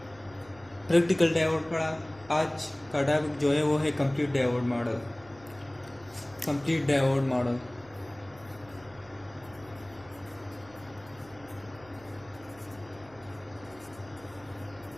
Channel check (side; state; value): right; noise; hum, 24 dB below the sound